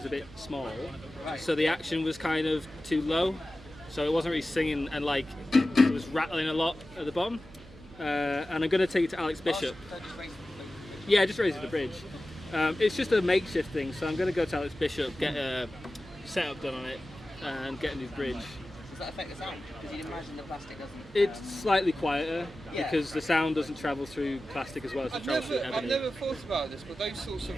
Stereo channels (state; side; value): noise; right; hum, 20 dB below the sound